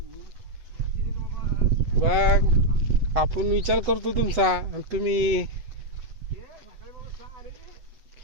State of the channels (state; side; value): late; left; 7.9 ms